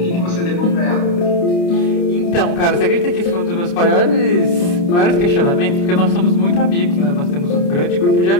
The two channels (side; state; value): right; late; 29 ms